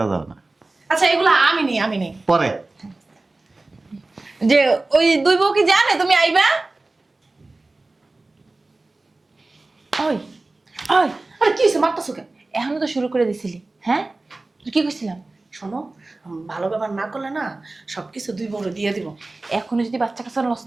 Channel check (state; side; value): quieter; left; 3.1 dB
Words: দাও না, আচ্ছা, এগুলো আমি নেই। পরে। যে ওই দুই বউ কি জানে তুমি আইবা? ওই ওই, আরে কি হয়েছে, মারতেছো কেন? এখনো তো শুরু করে দিছিলি। হ্যাঁ, তুই কি কইছিলাম? শোনো, ভালো ব্যবহার না করলে না সবকিছু দুই বড় দিয়ে দিব। এখনো যদি বাচ্চা কাচ্চা লস